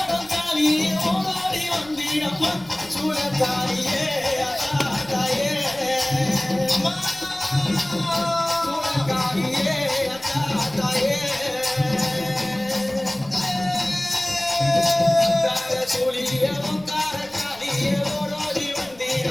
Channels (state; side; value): noise; left; rumble, 25 dB below the sound